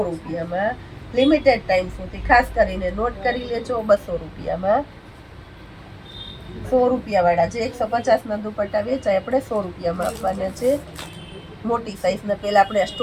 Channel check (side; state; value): both; identical; correlation 1.00